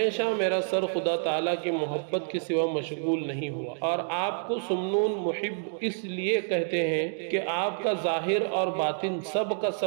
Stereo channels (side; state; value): left; silent; digital silence